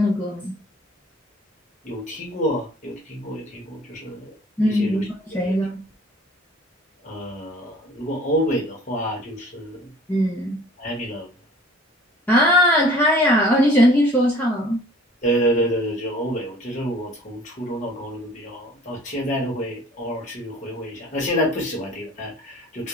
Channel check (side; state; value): both; normal; correlation 0.50